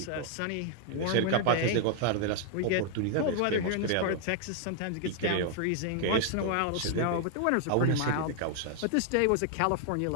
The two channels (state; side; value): different; both; correlation 0.00